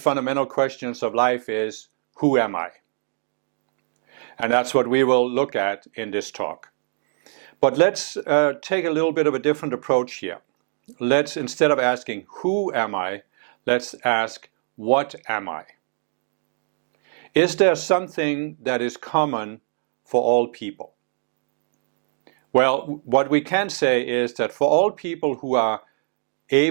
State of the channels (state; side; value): silent; left; digital silence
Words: questions of life is, who am I? And that's what we will look at in this talk. But let's take a little bit of a different approach here. Let's, instead of asking, who am I, let's ask, what am I? Is there something that is common for all people? Well, what we can say is that for all people who are